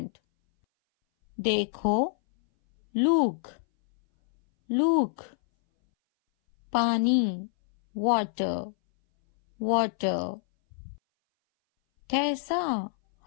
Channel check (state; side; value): silent; right; 59 dB below the other